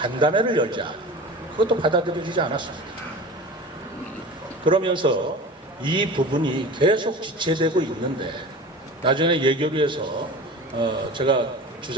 열자. 그것도 받아들여지지 않았습니다. 그러면서 이 부분이 계속 지체되고 있는데 나중에 예결위에서 제가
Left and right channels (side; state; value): both; normal; correlation 0.36